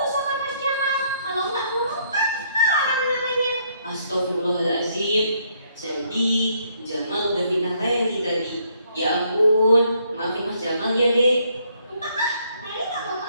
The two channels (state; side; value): inverted; both; correlation -0.69